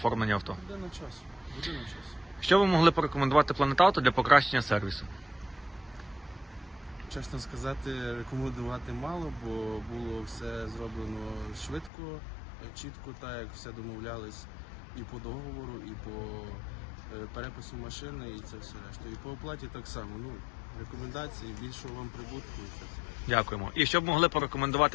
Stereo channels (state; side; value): drops out; right; at 11.9 s